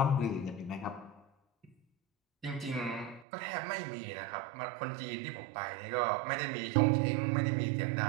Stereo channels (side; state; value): left; drops out; at 3.2 s